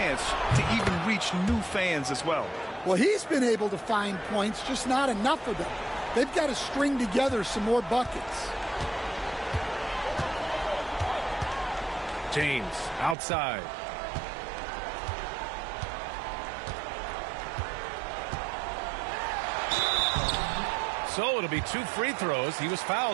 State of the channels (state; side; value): drops out; left; at 13.2 s